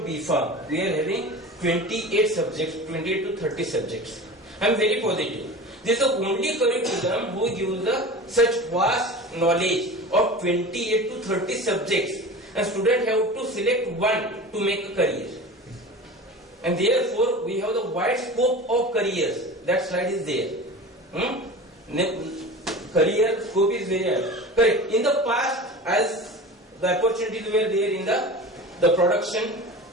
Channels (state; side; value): normal; both; correlation 0.34